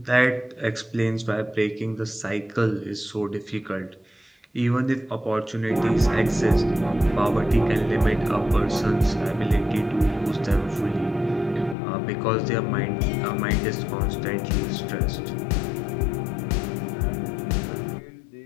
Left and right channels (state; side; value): drops out; right; at 11.8 s